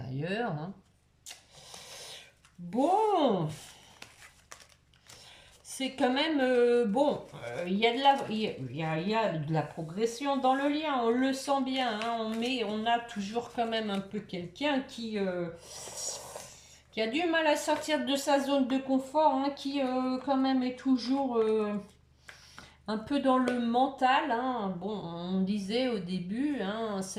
Hein. Bon, c'est quand même bon. Il y a de la, il y a de la progression dans le lien. On le sent bien. Hein, on a toujours quand même un peu quelqu'un qui a du mal à sortir de sa zone de confort, hein, qui quand même est toujours un peu dans le mental. Hein. Bon, on disait au début, hein,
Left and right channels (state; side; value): identical; both; correlation 1.00